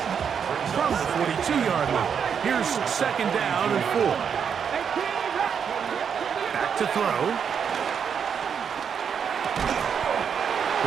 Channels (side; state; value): left; quieter; 7.2 dB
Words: From the 42-yard line. Here's second down and 4. Back to throw.